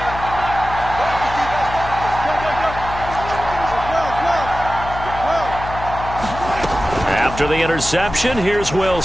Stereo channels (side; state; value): left; noise; hum, 10 dB below the sound